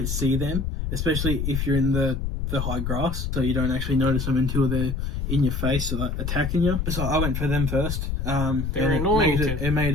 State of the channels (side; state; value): left; noise; rumble, 2 dB below the sound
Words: see them, especially if you're in the high grass, so you don't actually notice them until they're in your face, so like attacking you. So I went for them first. They're annoying. It